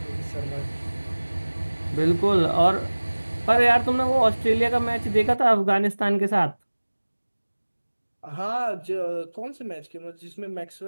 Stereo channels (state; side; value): inverted; both; correlation -1.00